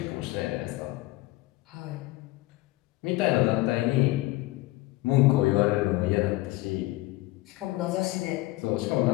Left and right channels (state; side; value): quieter; right; 18.9 dB